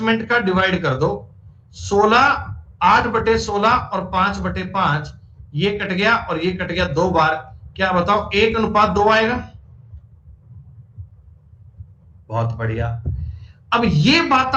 का डिवाइड कर दो। 8/16 और 5/5, ये कट गया और ये कट गया 2 बार। क्या बताओ 1:2 आएगा? बहुत बढ़िया। अब ये बात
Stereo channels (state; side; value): identical; both; correlation 1.00